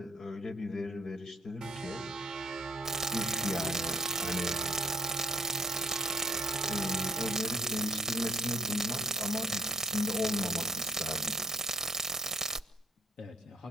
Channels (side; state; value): both; normal; correlation 0.57